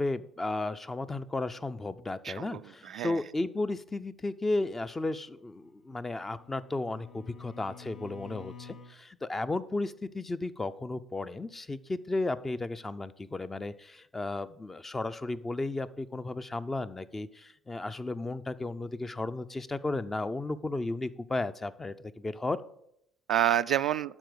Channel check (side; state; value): both; normal; correlation 0.78